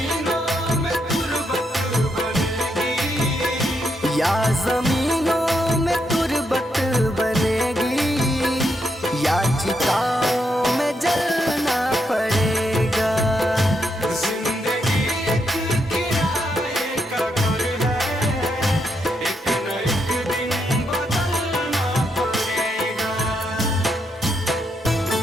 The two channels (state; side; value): normal; both; correlation 0.79